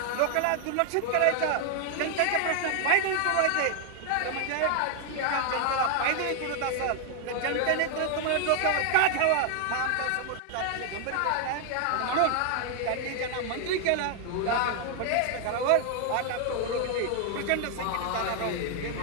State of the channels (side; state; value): both; different; correlation 0.00